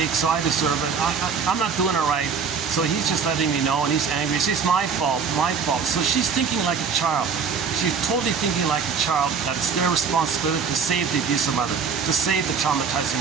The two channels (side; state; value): left; quieter; 6.0 dB